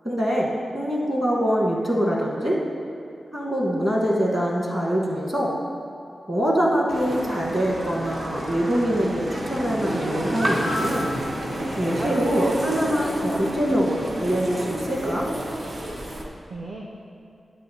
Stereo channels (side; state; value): both; normal; correlation 0.91